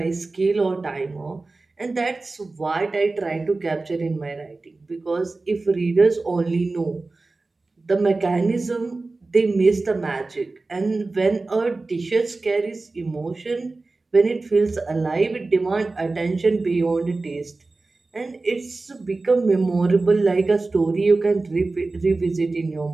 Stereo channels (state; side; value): quieter; left; 3.5 dB